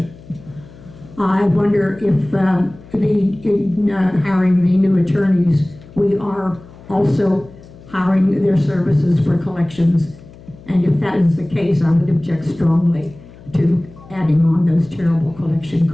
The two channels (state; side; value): noise; left; hum, 21 dB below the sound